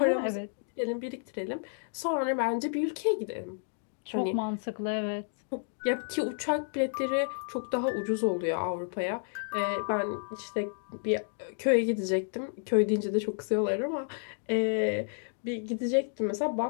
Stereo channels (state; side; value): silent; right; digital silence